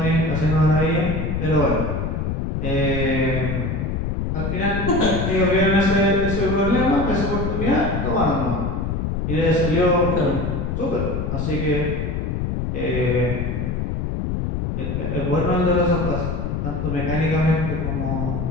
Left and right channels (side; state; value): left; noise; rumble, 1 dB below the sound